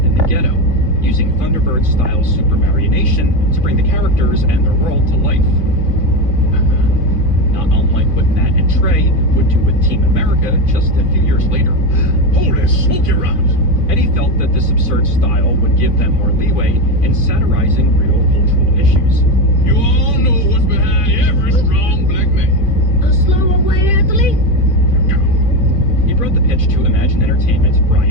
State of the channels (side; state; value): right; late; 2.6 ms